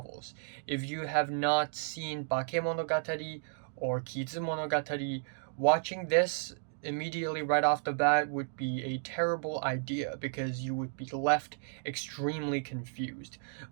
If you have not seen Bakemonogatari or Kizumonogatari, watching this immediately right off the bat would be a terrible idea because you would be left extremely confused.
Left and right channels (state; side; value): silent; left; digital silence